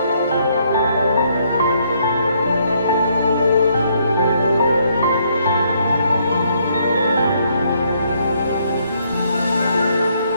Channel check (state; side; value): inverted; both; correlation -0.70